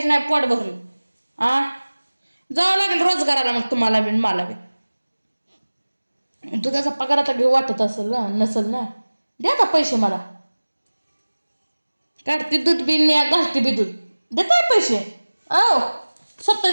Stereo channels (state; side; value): inverted; both; correlation -1.00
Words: नाही पोट भरून. जावं लागेल रोजगाराला मग तुम्हाला बी मला बी. दुधाचा पगार आता घेऊ वाटत असेल ना नसेल ना. द्या आता पैसे मला. काढते दूध बिन मी घालते बी दूध. देताय पैसे?